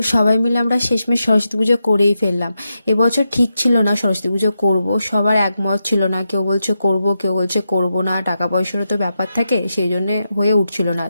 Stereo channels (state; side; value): inverted; both; correlation -0.87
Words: সবাই মিলে আমরা শেষমেশ সরস্বতী পুজো করেই ফেললাম। এবছর ঠিক ছিল না সরস্বতী পুজো করব, সবার একমত ছিল না, কেউ বলছে করব কেউ বলছে করব না, টাকা পয়সারও তো ব্যাপার থাকে, সেই জন্যে হয়ে উঠছিল না।